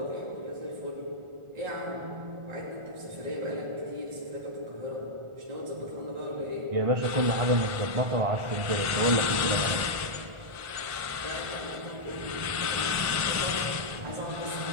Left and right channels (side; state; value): left; late; 1.4 ms